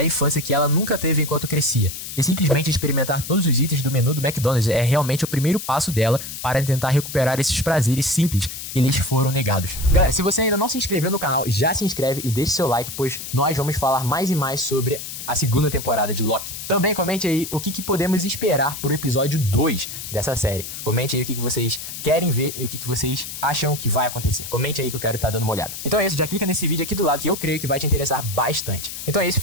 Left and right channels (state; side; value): noise; left; hiss, 9 dB below the sound